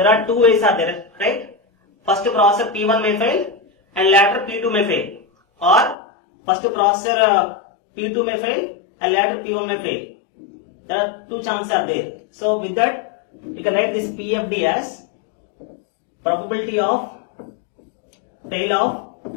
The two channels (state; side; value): drops out; right; at 6.0 s